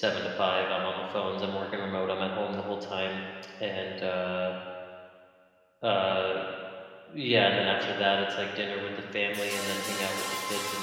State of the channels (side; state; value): both; identical; correlation 1.00